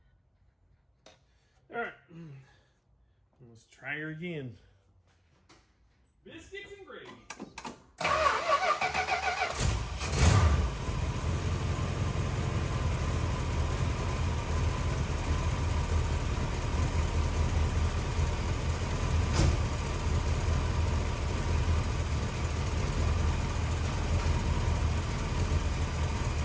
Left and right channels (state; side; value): identical; both; correlation 1.00